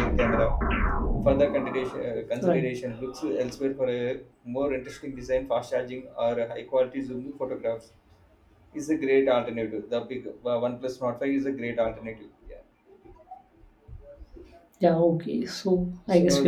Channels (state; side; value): identical; both; correlation 1.00